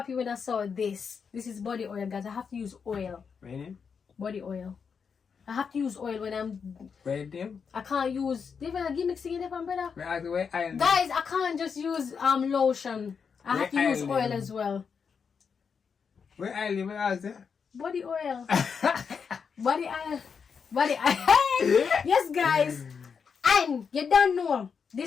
when I saw this. This is body oil, guys. I have to use oil. Ready? Body oil. I have to use oil when I'm ready. I can't use different gimmicks to get brother. Guys, I can't just use lotion. I have to use oil as well. Where I live, where is it? Body oil. Body oil. Yes, guys. And you don't know,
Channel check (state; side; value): quieter; right; 6.2 dB